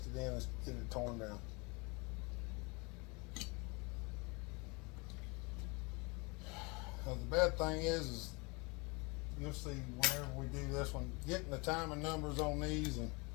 in, is get it torn down. Now the bad thing is you'll see whenever we do this one, getting the timing numbers on these and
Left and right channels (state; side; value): quieter; right; 28.5 dB